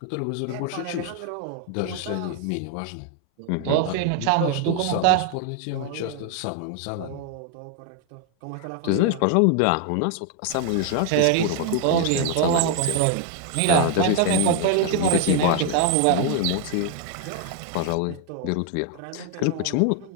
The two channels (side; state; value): both; different; correlation 0.00